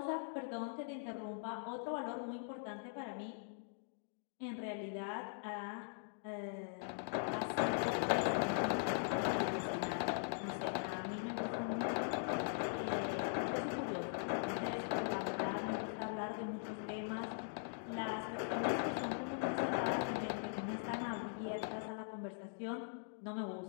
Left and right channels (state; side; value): silent; right; digital silence